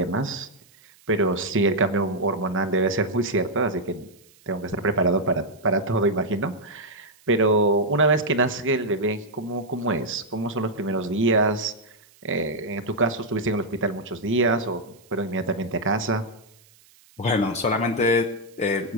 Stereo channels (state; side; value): noise; right; hiss, 29 dB below the sound